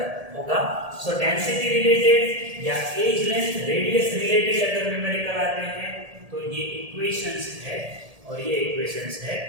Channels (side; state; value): left; late; 1.8 ms